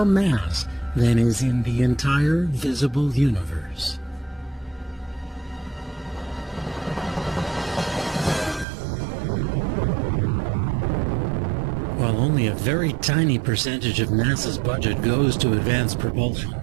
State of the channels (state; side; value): drops out; left; at 8.7 s